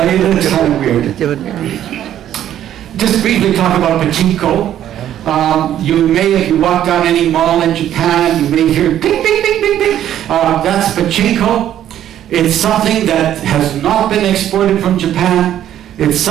kind of weird. Just briefly talk about pachinko. You may, if you walk down any mall in Japan, you may hear ping, ping, ping, ping, ping. That's pachinko. It's something that has not been exported from Japan. It's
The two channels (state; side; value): quieter; left; 11.3 dB